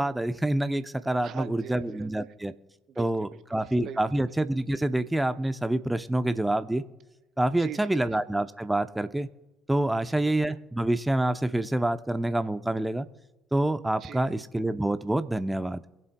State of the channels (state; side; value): normal; both; correlation 0.97